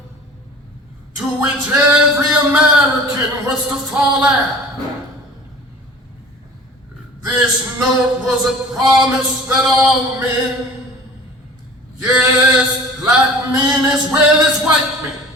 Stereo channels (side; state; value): both; normal; correlation 0.44